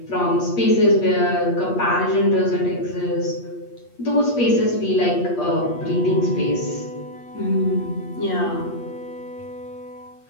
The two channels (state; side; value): late; right; 8.4 ms